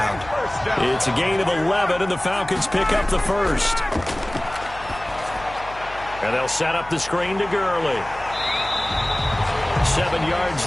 It's a gain of 11, and the Falcons pick up the first. And they'll set up the screen to Gurley. 7 yards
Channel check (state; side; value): noise; left; hum, 17 dB below the sound